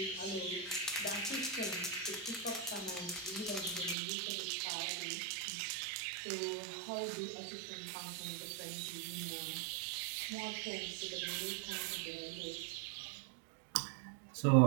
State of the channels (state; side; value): drops out; left; at 4.0 s